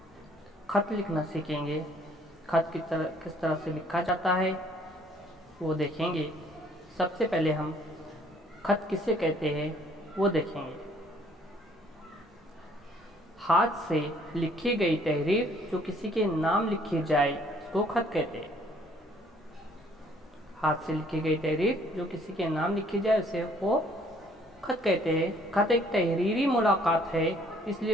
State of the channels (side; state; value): both; normal; correlation 0.61